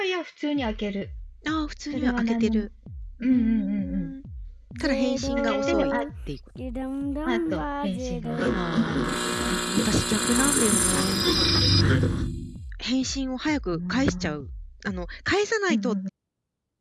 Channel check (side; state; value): both; identical; correlation 1.00